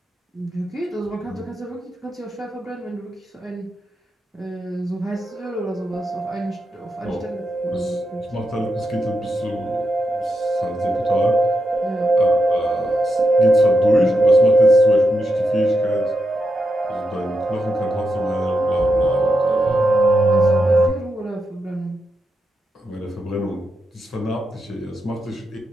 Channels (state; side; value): normal; both; correlation 0.85